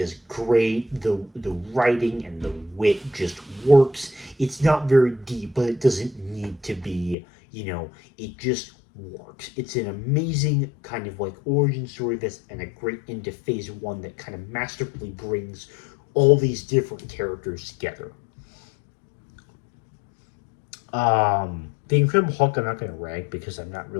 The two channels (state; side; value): drops out; right; at 7.2 s